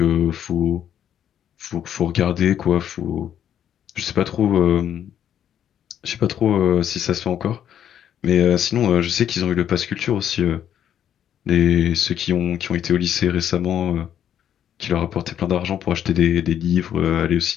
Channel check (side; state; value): right; quieter; 9.8 dB